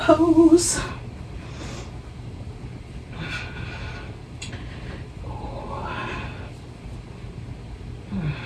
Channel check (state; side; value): identical; both; correlation 1.00